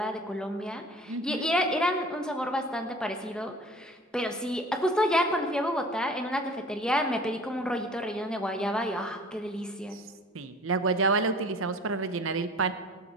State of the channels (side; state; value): both; normal; correlation 0.45